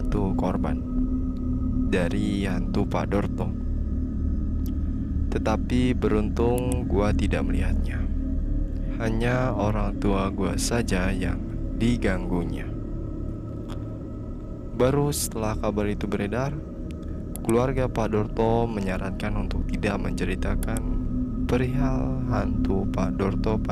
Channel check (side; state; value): both; identical; correlation 1.00